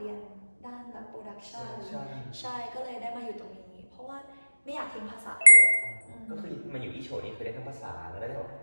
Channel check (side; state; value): both; inverted; correlation -1.00